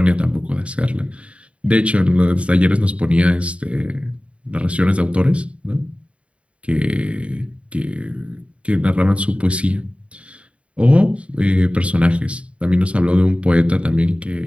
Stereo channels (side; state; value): left; late; 0.062 ms